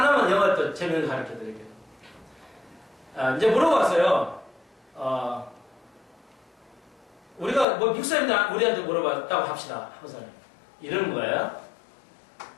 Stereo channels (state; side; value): drops out; right; at 7.7 s